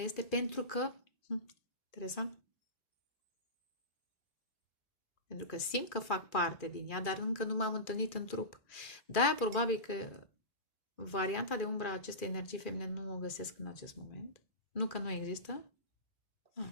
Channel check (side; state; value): right; late; 2.4 ms